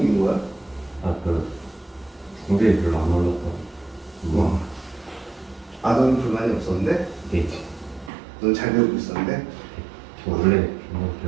거야? 그 공대에 별로 안 올라서. 너는 불만이 없었는데? 네. 넌 잘 배우고 있었는데? 저 원래 영어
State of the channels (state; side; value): drops out; left; at 8.1 s